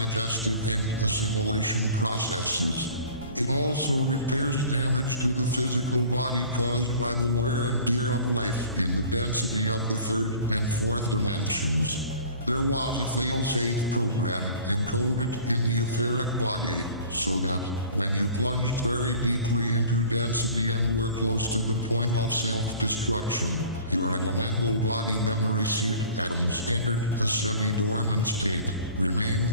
and assimilation processes. It also repairs damage to the physical body caused by the wear and tear of life in the density of the third and fourth dimensions. There was a fail-safe program encoded in the etheric body, so that, when you plunged very deeply into density and were close to the point of self-destruction, your elemental body memory seed atoms entered a semi-dormant state,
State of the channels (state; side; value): inverted; both; correlation -0.46